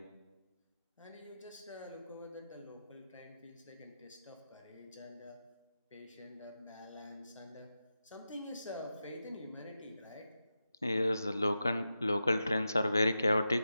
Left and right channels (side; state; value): both; inverted; correlation -0.91